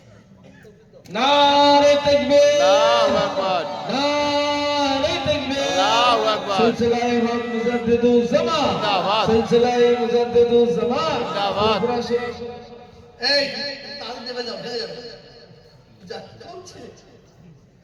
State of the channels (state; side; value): identical; both; correlation 1.00